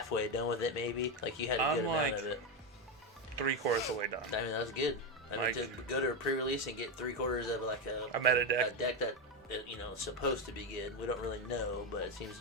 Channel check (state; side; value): normal; both; correlation 0.10